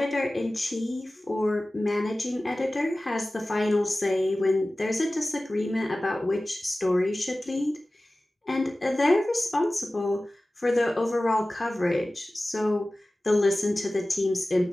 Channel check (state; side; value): normal; both; correlation 0.97